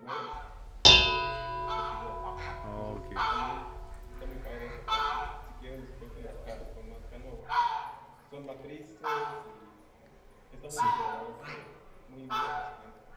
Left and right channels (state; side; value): identical; both; correlation 1.00